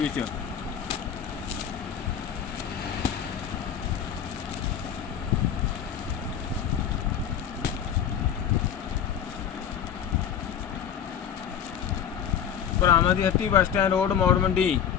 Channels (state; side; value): quieter; right; 8.6 dB